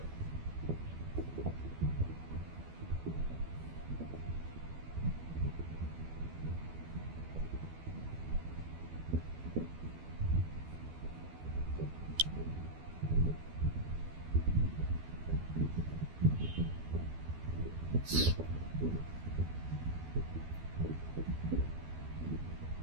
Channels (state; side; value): late; left; 12 ms